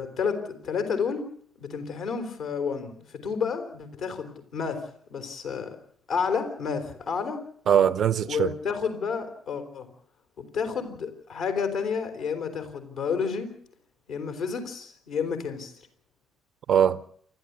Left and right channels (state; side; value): normal; both; correlation 0.62